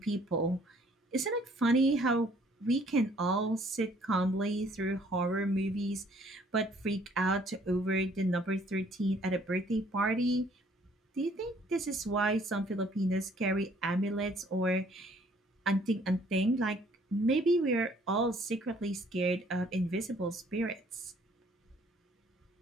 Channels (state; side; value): normal; both; correlation 0.61